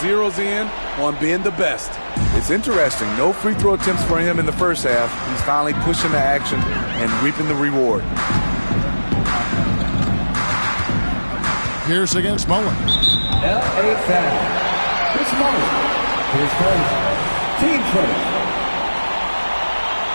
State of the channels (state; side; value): inverted; both; correlation -1.00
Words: in on being the best. It's interesting. No free throw attempts for him in the first half. He's finally pushing the action and reaping the reward. Pierce against Mullen. L.A. foul. Chris Mullen. His first team first.